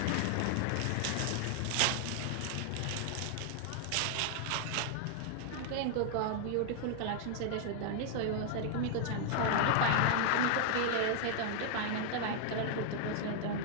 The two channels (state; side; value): different; both; correlation -0.01